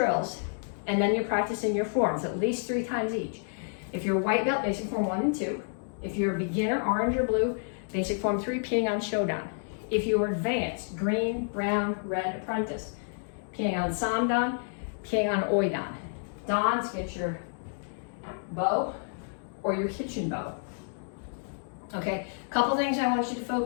and then you're practicing your forms at least 3 times each. If you're a white belt, basic form 1 and 2. If you're a beginner, orange or blue, basic form 3, Petsching Shodan. If you're advanced, green, brown, red, apprentice, Petsching Samdan, Petsching Oidan. Dons, get your bow or your kitchen bow. Okay, couple things I want you to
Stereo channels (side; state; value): right; silent; digital silence